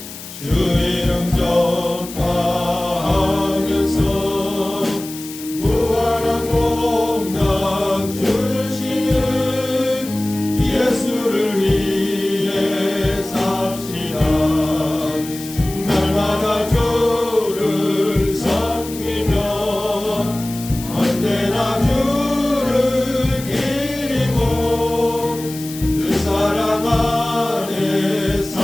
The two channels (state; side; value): noise; left; hiss, 13 dB below the sound